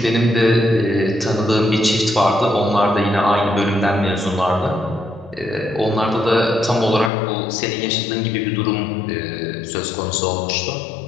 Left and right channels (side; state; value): right; drops out; at 7.1 s